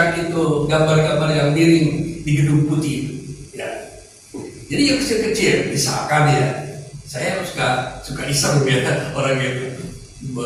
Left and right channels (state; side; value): identical; both; correlation 1.00